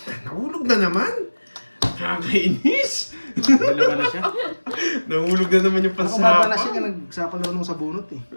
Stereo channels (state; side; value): inverted; both; correlation -1.00